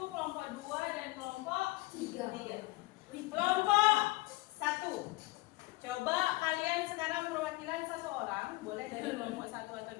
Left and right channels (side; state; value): right; quieter; 21.2 dB